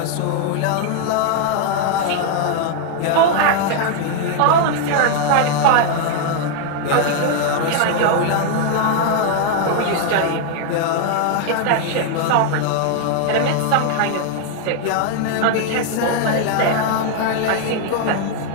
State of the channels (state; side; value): different; both; correlation 0.00